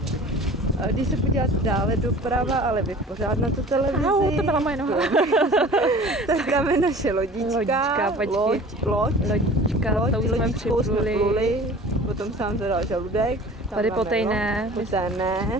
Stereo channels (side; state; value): both; normal; correlation 0.43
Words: A když se podíváte dále doprava, ale vy pořád na tu televizi. To byla moje noha. Tak tam je naše lodička. Lodička, to už jsme připluli. Potom sám zadal žaludek. Tady potejné.